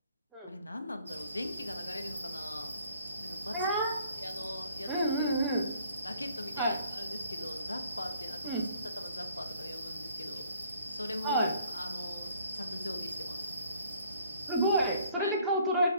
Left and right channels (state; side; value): inverted; both; correlation -0.61